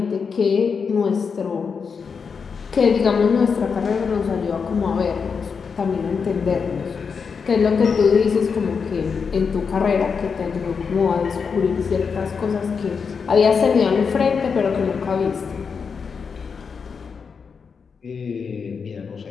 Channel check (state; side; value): quieter; right; 5.8 dB